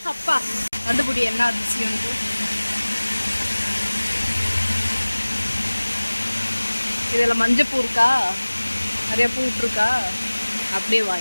அப்பா கண்டுபிடி என்ன அதிசயம்ட்டு. இதில் மஞ்சப்பூ இருக்கா, நிறைய பூ விட்டுருக்கா. அப்படியே வா,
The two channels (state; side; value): inverted; both; correlation -1.00